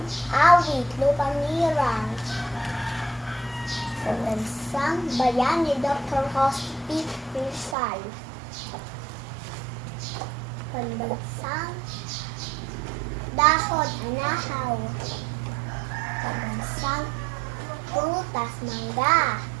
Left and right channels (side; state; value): left; drops out; at 7.8 s